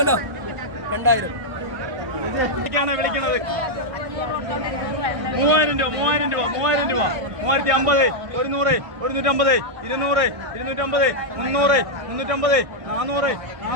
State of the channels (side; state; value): left; late; 1.6 ms